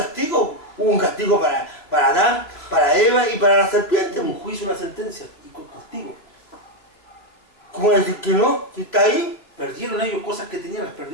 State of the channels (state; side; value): late; right; 3.0 ms